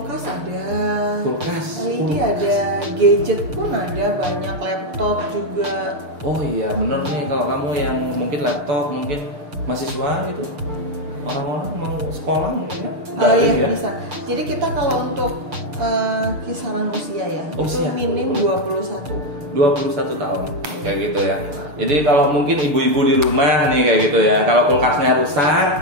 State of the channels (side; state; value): left; late; 6.7 ms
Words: ada, LED ada, gadget pun ada, banyak, laptop juga. Oh iya bener nih, kalau kamu yang mungkin laptop, mungkin mahasiswa gitu, orang-orang mau sekolah mungkin ya? Iya bisa. Jadi kita kalau untuk kisaran usia ya, itu minim 21 tahun kayak gitu ya. Jadi kalau mungkin ibu-ibu di rumah nih kayak gitu ya, kalau kulkasnya